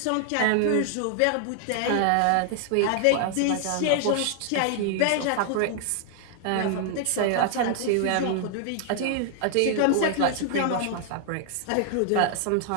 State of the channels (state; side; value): different; both; correlation 0.00